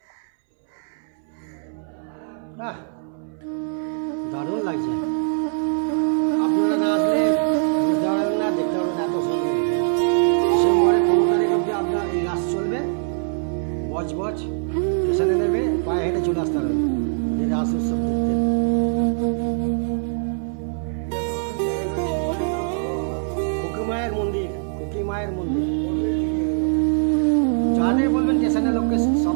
দারুণ লাগছে। আপনারা না আসলে বুঝতে পারবেন না, দেখতে পারবেন না, এত সুন্দর। ডিসেম্বরের 15 তারিখ অবধি আপনার এই রাস চলবে। বজ স্টেশনে নেবে, পায়ে হেঁটে চলে আসতে হবে এই রাস উৎসব দেখতে। খুকি মায়ের মন্দির যাদের বলবেন স্টেশনের লোককে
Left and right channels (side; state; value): left; silent; 64 dB below the other